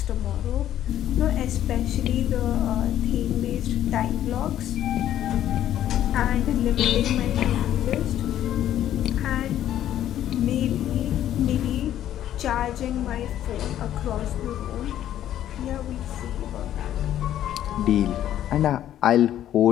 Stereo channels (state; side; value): quieter; right; 11.7 dB